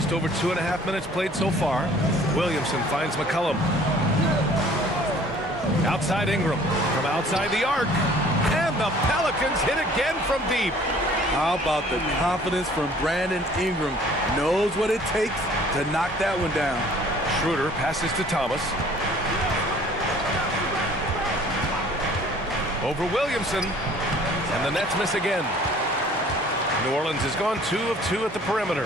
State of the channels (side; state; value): both; normal; correlation 0.53